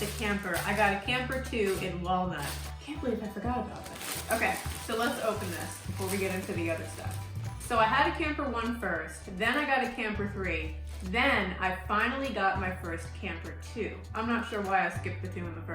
camper. I got a camper 2 in walnut. Can't believe I forgot about that. Okay, so let's open this before we get into the other stuff. So I had a camper 1 first, then I got a camper 3, then I finally got my first camper 2. I'm not sure why I skipped the 2 in the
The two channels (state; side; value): identical; both; correlation 1.00